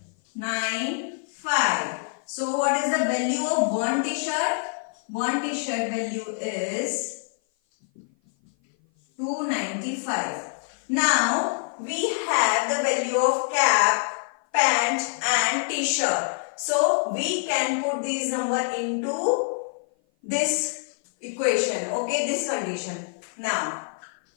So what is the value of 1 t-shirt? 1 t-shirt value is 295. Now we have the value of cap, pant and t-shirt. So we can put these number into this equation. Okay, this condition. Now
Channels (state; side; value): silent; right; 56 dB below the other